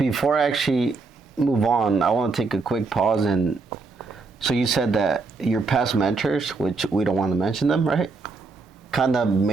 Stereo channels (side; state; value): left; quieter; 4.1 dB